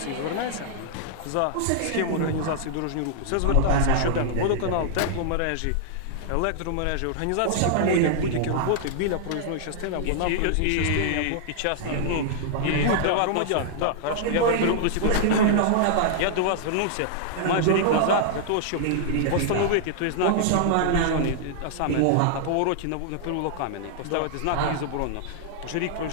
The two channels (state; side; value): different; both; correlation -0.01